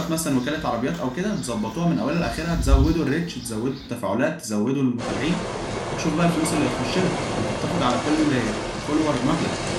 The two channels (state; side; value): identical; both; correlation 1.00